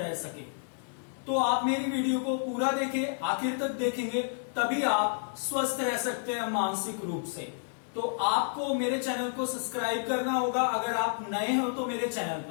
सके। तो आप मेरी वीडियो को पूरा देखें, आखिर तक देखेंगे तभी आप स्वस्थ रह सकते हैं मानसिक रूप से। तो आपको मेरे चैनल को सब्सक्राइब करना होगा अगर आप नए हो तो मेरे चैनल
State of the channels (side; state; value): right; silent; digital silence